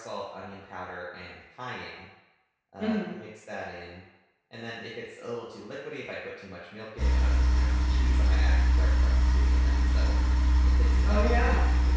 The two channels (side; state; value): both; identical; correlation 1.00